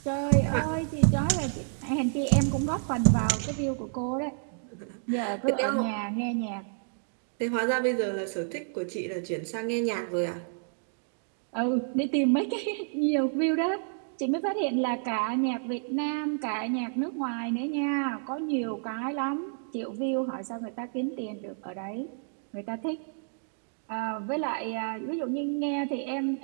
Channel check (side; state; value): left; silent; digital silence